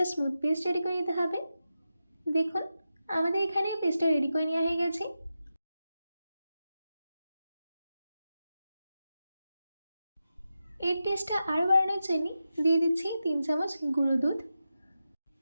স্মুথ পেস্ট রেডি করে নিতে হবে। দেখুন আমাদের এখানে পেস্টটা রেডি করে নেওয়া হয়ে গেছে। এর টেস্টটা আরও বাড়ানোর জন্য দিয়ে দিচ্ছি 3 চামচ গুঁড়ো দুধ।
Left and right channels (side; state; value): both; inverted; correlation -0.90